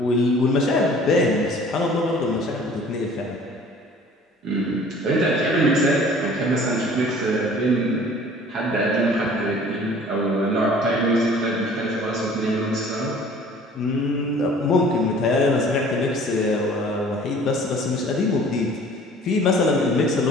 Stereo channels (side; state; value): both; normal; correlation 0.50